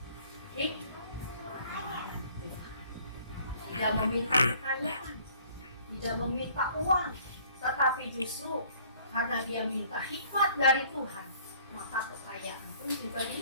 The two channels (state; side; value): inverted; both; correlation -0.57